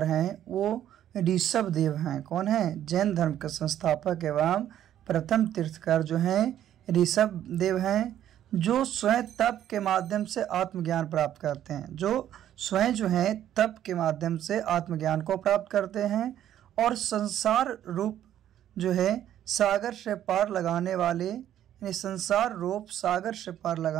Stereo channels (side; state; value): left; quieter; 11.3 dB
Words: हैं वो ऋषभ देव हैं। कौन है? जैन धर्म के संस्थापक एवं प्रथम तीर्थकार जो हैं ऋषभ देव हैं, जो स्वयं तप के माध्यम से आत्मज्ञान प्राप्त करते हैं। जो स्वयं जो है तप के माध्यम से आत्मज्ञान को प्राप्त करते हैं और संसार रूप जो है सागर से पार लगाने वाले, यानी संसार रूप सागर से पार